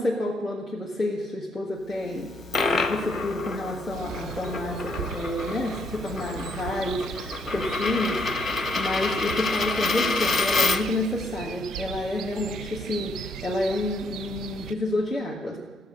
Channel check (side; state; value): both; normal; correlation 0.72